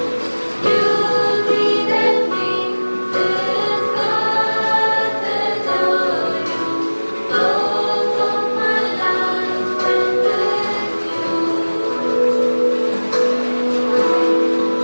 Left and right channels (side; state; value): both; inverted; correlation -1.00